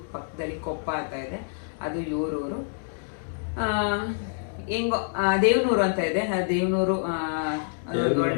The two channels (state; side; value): silent; right; digital silence